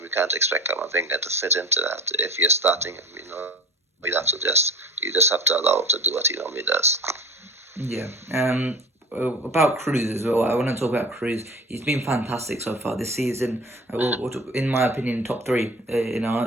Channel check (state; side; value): normal; both; correlation 0.36